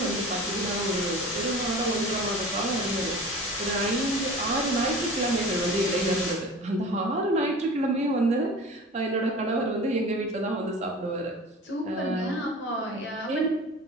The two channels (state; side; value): normal; both; correlation 0.38